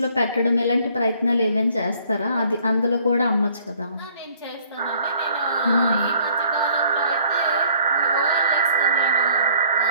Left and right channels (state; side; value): inverted; both; correlation -0.60